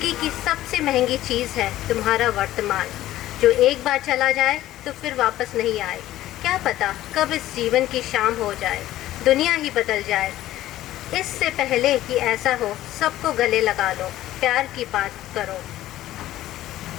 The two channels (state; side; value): quieter; right; 14.5 dB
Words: की सबसे महंगी चीज़ है तुम्हारा वर्तमान, जो एक बार चला जाए तो फिर वापस नहीं आए। क्या पता कब इस जीवन की शाम हो जाए, दुनिया ही बदल जाए। इससे पहले कि ऐसा हो, सबको गले लगा लो, प्यार की बात करो,